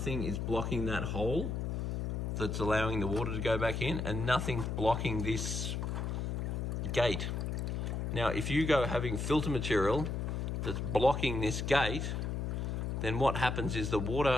is blocking that hole that's allowing the water to go back in, and nothing's blocking this gate. Now, if you go having filter material that's blocking this gate, then what happens is the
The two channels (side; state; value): left; noise; hum, 2 dB below the sound